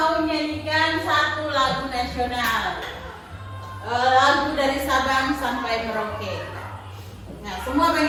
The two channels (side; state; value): both; identical; correlation 1.00